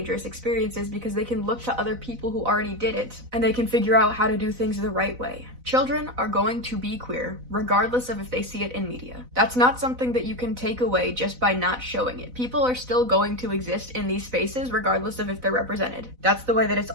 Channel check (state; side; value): late; left; 4.0 ms